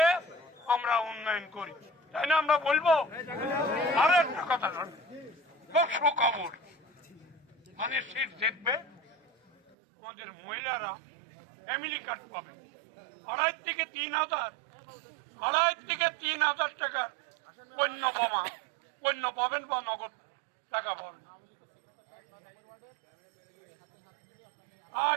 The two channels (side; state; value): left; drops out; at 9.8 s